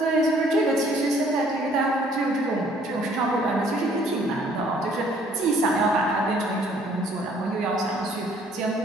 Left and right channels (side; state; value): both; normal; correlation 0.60